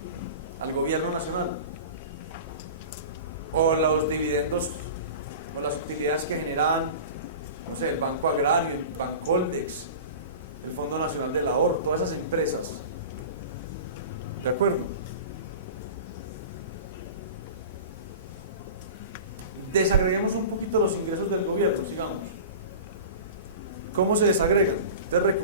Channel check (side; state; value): both; inverted; correlation -0.34